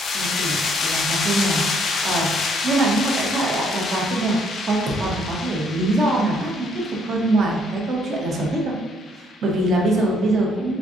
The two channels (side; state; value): both; normal; correlation 0.67